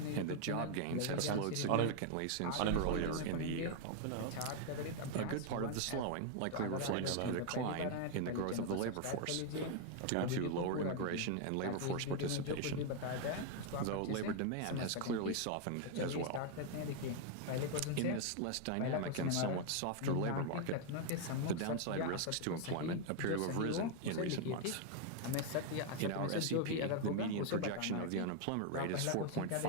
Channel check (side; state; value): both; different; correlation 0.00